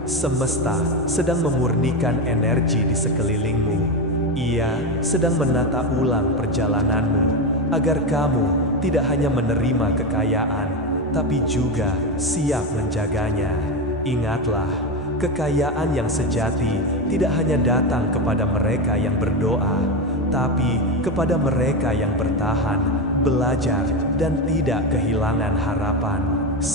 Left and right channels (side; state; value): both; normal; correlation 0.14